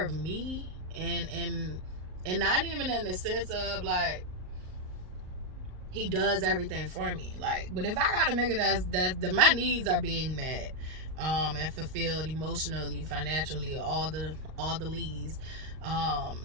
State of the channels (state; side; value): late; left; 38 ms